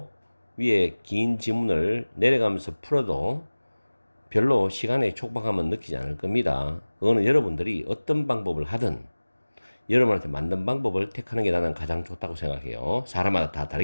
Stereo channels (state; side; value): inverted; both; correlation -1.00